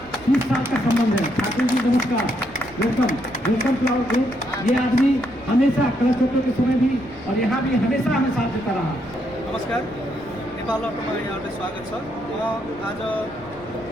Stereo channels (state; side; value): noise; left; rumble, 21 dB below the sound